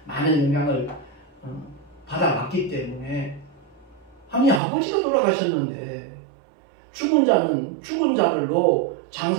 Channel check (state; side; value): drops out; left; at 4.6 s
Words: 많은 영향을 받아왔기 때문에 아니 아버지가 돌아가셨는데 죽은 자는 죽은 자들로